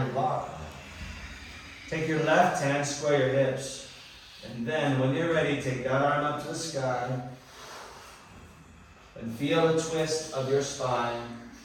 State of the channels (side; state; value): both; identical; correlation 1.00